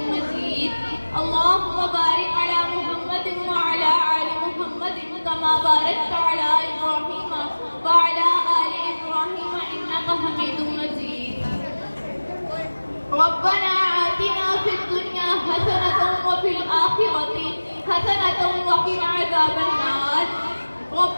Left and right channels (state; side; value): inverted; both; correlation -1.00